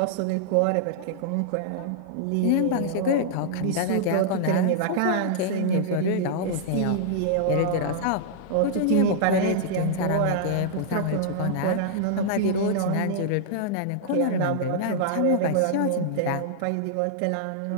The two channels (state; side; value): different; both; correlation -0.01